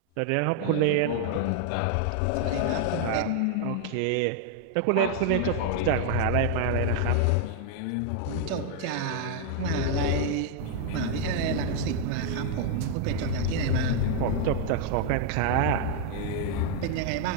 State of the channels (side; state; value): both; different; correlation 0.00